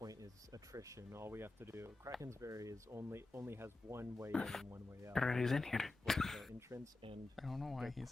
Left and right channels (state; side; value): quieter; right; 3.0 dB